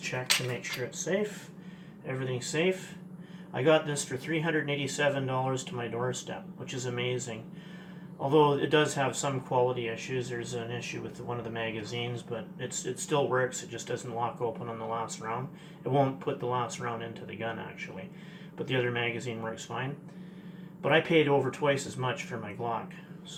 to make sure it's safe. Everything's safe. I got this for $387 to my doorstep, which is amazing. Although it does have some quality issues. There's an issue with one of the magazines, but it still works. It just doesn't lock open on the last round. It won't put the last round into the gun, actually. But the other magazine works fine. But I paid over twice as much for my Glock.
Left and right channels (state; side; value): identical; both; correlation 1.00